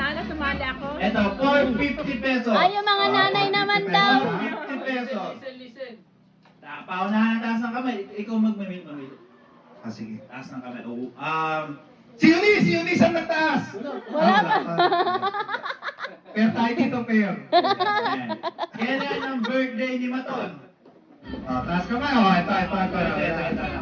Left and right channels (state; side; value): identical; both; correlation 1.00